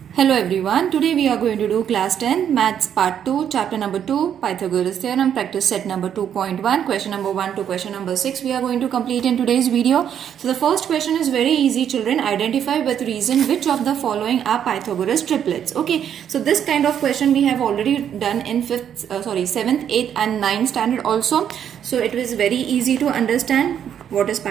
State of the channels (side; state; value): left; quieter; 9.1 dB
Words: Hello everyone, today we are going to do class 10 maths part 2 chapter number 2 Pythagoras theorem practice set number 2.1 question number 1 to question number 6 we are going to complete in today's video. So the first question is very easy children, identify with reason which of the following are Pythagoras triplets. Okay, so this kind of question we have already done in 7th, 8th and 9th standard also. So it was very easy to understand what is